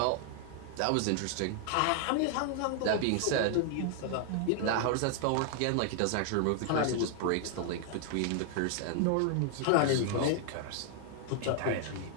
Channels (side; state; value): both; different; correlation 0.00